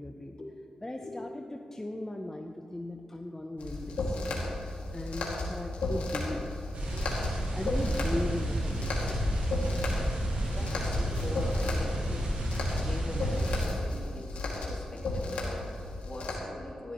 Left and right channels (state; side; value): normal; both; correlation 0.86